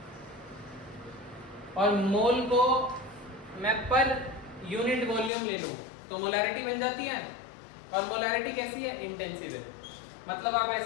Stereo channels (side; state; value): right; drops out; at 5.3 s